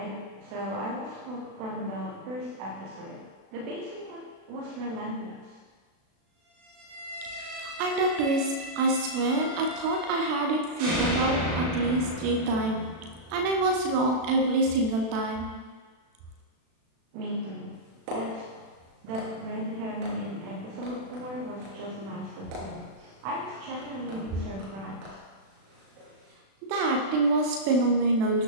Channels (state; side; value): late; left; 36 ms